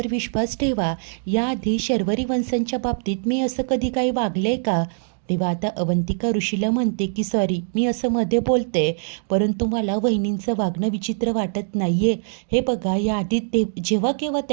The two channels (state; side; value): silent; left; digital silence